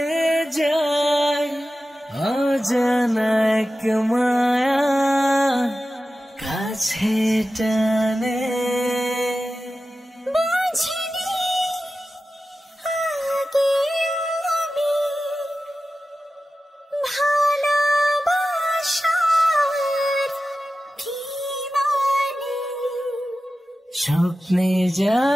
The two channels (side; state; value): both; normal; correlation 0.94